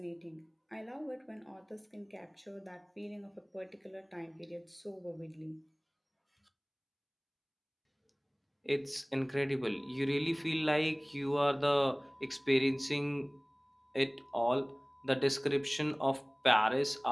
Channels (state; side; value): identical; both; correlation 1.00